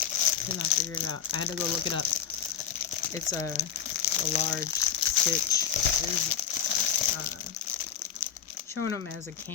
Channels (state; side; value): quieter; right; 8.8 dB